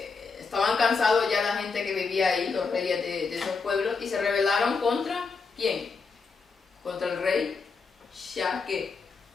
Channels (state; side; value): quieter; right; 4.8 dB